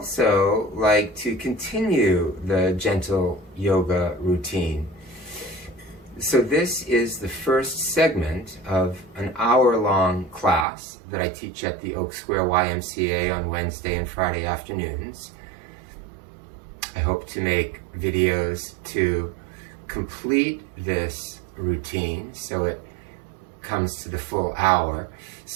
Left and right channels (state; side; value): drops out; left; at 10.7 s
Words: like to continue the gentle yoga routine. So this is the first segment of an hour-long class that I teach at the Oak Square YMCA on Wednesday and Friday afternoons. I hope to make videos to complete this routine so it comes to the full hour.